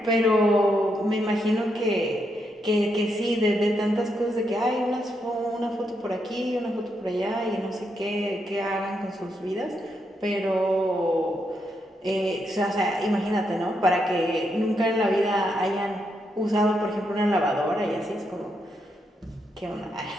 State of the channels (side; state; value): both; normal; correlation 0.80